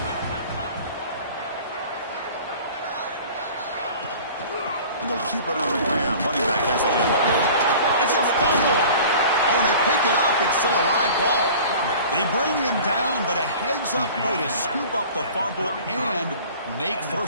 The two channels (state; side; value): inverted; both; correlation -0.43